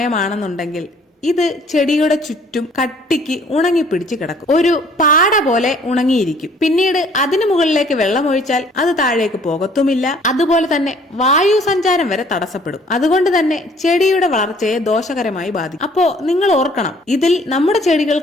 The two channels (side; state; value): both; normal; correlation 0.57